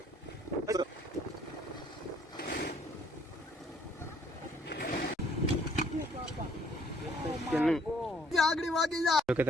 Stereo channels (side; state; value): both; normal; correlation 0.62